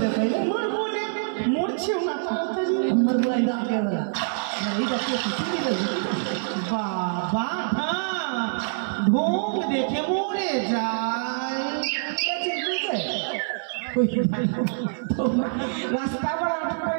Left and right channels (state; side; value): silent; left; 56 dB below the other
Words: दे पहले মরবো না, মরছেও না তাড়াতাড়ি हमर बुलाई डाल के वाला अरे এটা কি শুনি দে বাবা ঢোক দেখে মরে যায়। রাস্তা আবার আটক